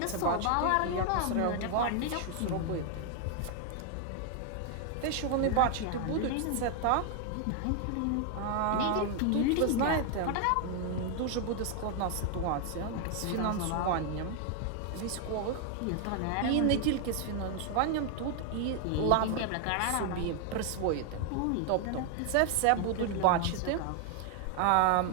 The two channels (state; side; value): different; both; correlation 0.00